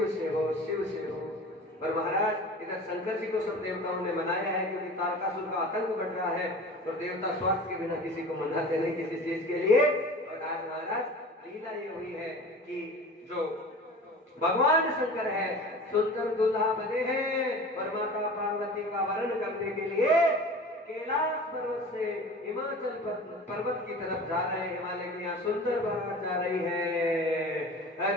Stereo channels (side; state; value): both; normal; correlation 0.38